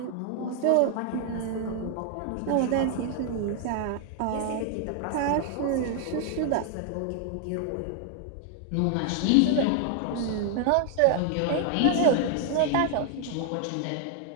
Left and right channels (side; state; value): both; different; correlation 0.00